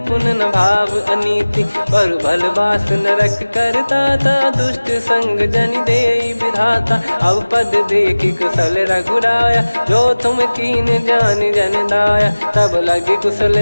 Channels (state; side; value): inverted; both; correlation -1.00